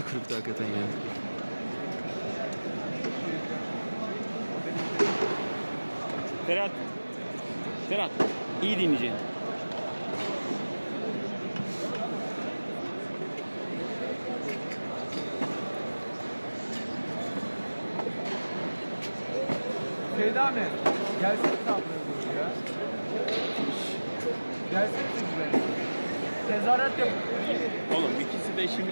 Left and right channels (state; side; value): inverted; both; correlation -1.00